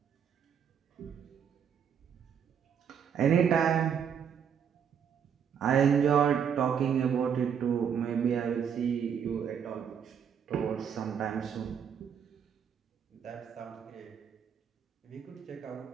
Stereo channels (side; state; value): left; quieter; 7.7 dB